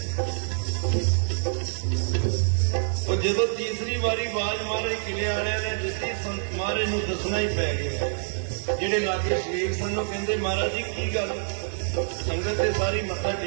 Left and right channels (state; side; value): silent; left; 61 dB below the other